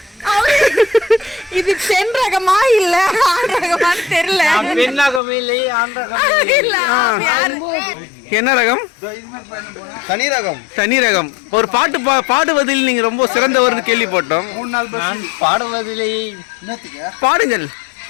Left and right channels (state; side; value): drops out; right; at 5.2 s